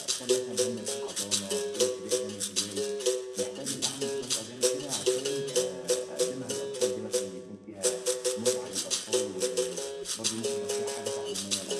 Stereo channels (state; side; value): identical; both; correlation 1.00